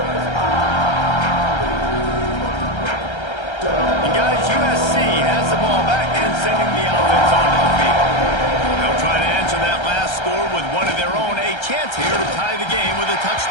And guys, USC has the ball back and sending the offense onto the field. They'll try to answer that last score with one of their own. A chance here to tie the game with a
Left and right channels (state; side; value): late; right; 1.3 ms